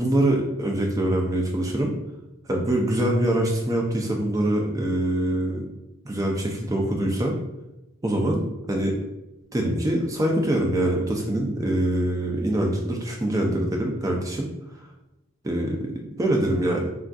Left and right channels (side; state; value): both; normal; correlation 0.74